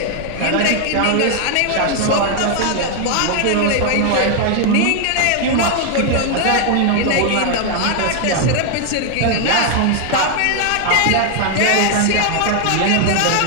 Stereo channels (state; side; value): different; both; correlation 0.00